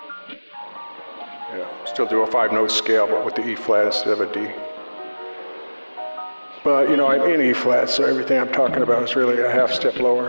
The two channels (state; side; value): inverted; both; correlation -1.00